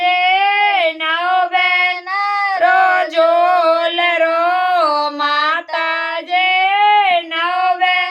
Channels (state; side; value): identical; both; correlation 1.00